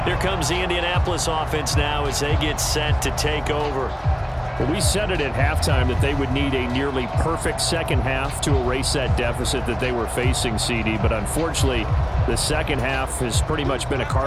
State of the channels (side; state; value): both; identical; correlation 1.00